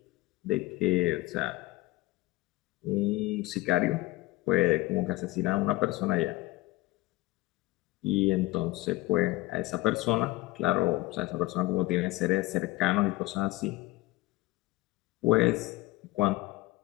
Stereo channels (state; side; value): quieter; right; 19.5 dB